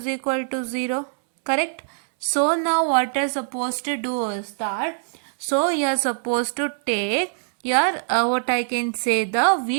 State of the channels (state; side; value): silent; left; 63 dB below the other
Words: equal to 0. Correct? So now what you're supposed to do is that, so you're supposed to take your, what I can say, the